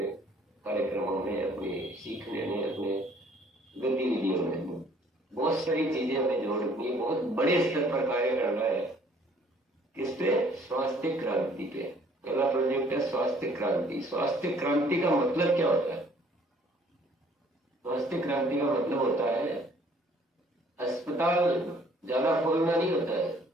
कार्यक्रमों में, अपने सीखने में, अपने गतिविधियों में। बहुत सारी चीजें हमें जोड़नी है, बहुत बड़े स्तर पर कार्य करना है। किस पे? स्वास्थ्य क्रांति पे। पहला प्रोजेक्ट है स्वास्थ्य क्रांति। स्वास्थ्य क्रांति का मतलब क्या होता है? स्वास्थ्य क्रांति का मतलब होता है अस्पताल ज्यादा खोलना नहीं होता है।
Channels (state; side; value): normal; both; correlation 0.59